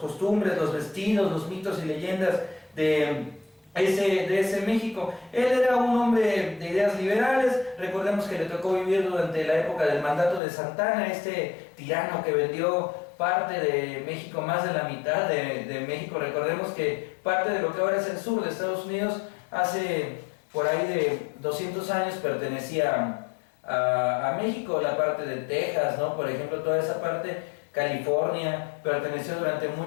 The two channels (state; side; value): drops out; right; at 10.4 s